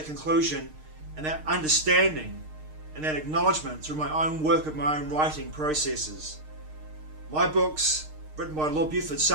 conclusion and that understanding and that acknowledgement through my own work of my own writing processes. My books, written by Lord Buford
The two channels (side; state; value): left; late; 6.5 ms